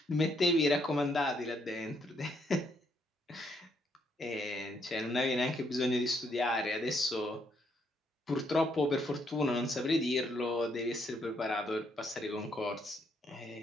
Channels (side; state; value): both; normal; correlation 0.73